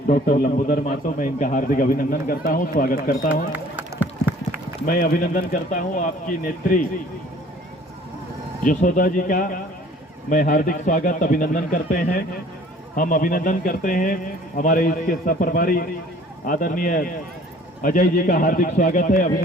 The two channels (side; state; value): both; normal; correlation 0.52